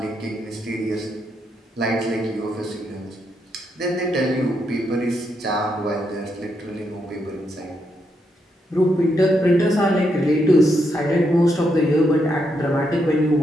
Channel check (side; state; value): both; normal; correlation 0.80